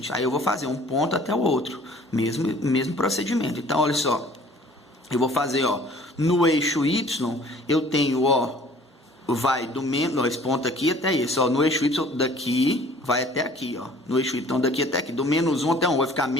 Aí eu vou fazer um ponto até o outro, mesmo procedimento. Então, olha só, eu vou fazer, ó, no eixo y, eu tenho, ó, vai do menos, esse ponto aqui até esse, ó, no eixo y daqui vai até aqui, ó, no eixo y, então daqui até aqui, do menos 1 até 1, vai ficar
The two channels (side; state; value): both; normal; correlation 0.52